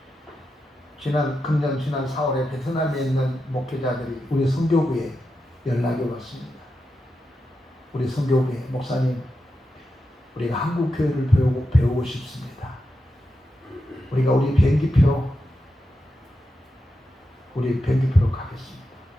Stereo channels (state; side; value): normal; both; correlation 0.88